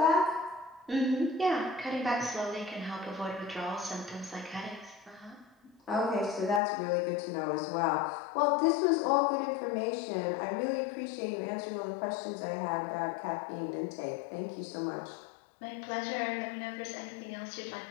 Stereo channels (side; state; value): right; drops out; at 6.6 s